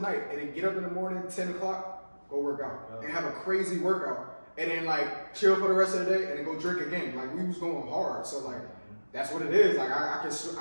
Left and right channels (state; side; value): inverted; both; correlation -1.00